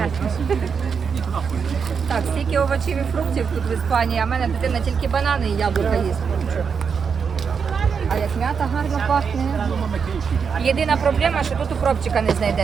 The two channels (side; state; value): left; quieter; 6.2 dB